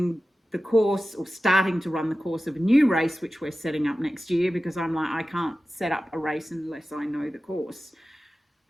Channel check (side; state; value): both; normal; correlation 0.95